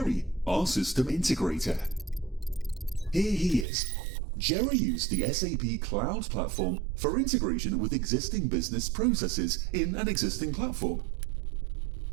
our system integrator. Here he is. Jerry used the SAP Cloud Platform for integration with existing business processes in an existing platform.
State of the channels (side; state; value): left; drops out; at 3.7 s